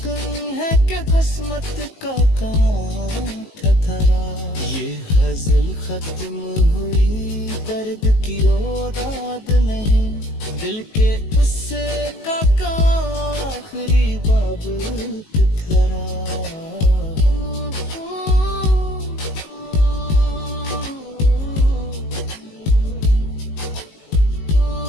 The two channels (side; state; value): right; late; 19 ms